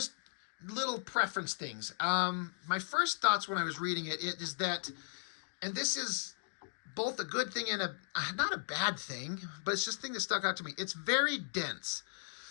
little preference things. My first thoughts when I was reading it is that, and this is both a good thing and not a bad thing, but it's just a thing that stuck out to me. It's very dense.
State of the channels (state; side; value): silent; right; digital silence